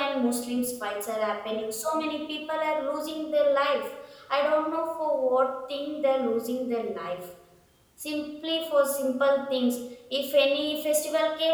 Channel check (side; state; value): both; identical; correlation 1.00